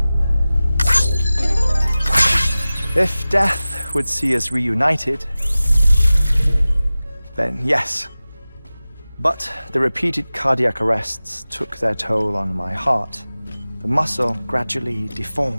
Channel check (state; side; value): inverted; both; correlation -0.97